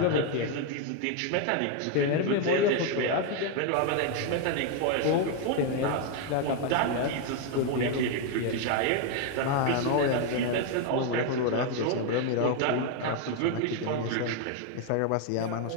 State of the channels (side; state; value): both; different; correlation 0.01